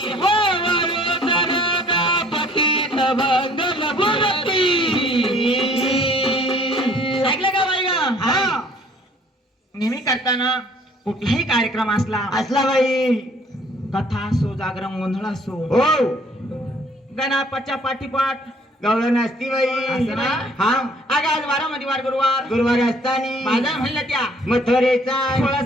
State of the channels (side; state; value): both; normal; correlation 0.58